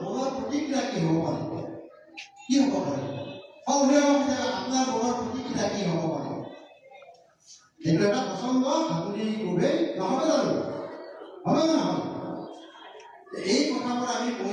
মনৰ প্ৰতিক্ৰিয়া কি হ'ব পাৰে অভিভাৱক হিচাপে আপোনাৰ মনৰ প্ৰতিক্ৰিয়া কি হ'ব পাৰে এইটো এটা পচন্দ হাতুৰি কোবেই নহ'ব জানো হবে নে নহয় এই কথাবোৰ আমি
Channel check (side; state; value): both; identical; correlation 1.00